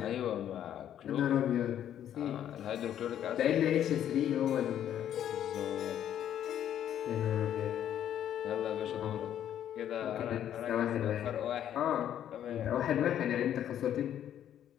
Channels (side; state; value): right; quieter; 10.5 dB